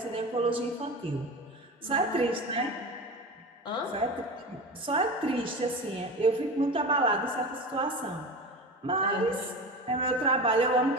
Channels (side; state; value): both; normal; correlation 0.29